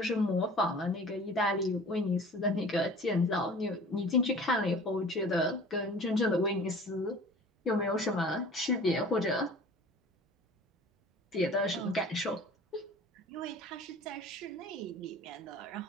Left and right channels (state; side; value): normal; both; correlation 0.44